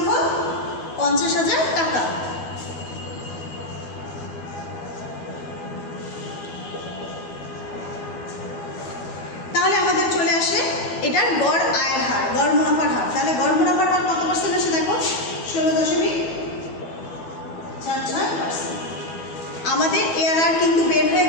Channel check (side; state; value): right; late; 12 ms